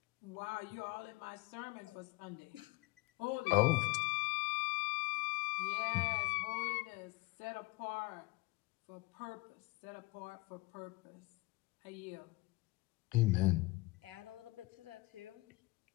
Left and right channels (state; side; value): quieter; right; 22.7 dB